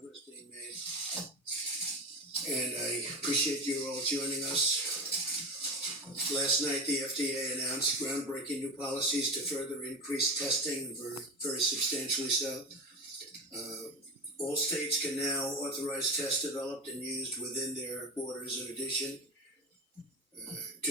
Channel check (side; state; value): both; normal; correlation 0.24